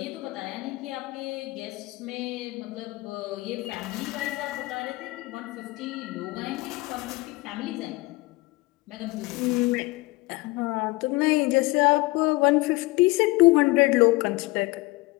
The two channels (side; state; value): right; quieter; 22.0 dB